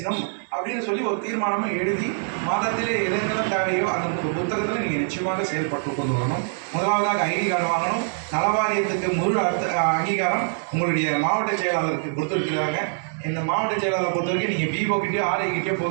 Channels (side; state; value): left; silent; digital silence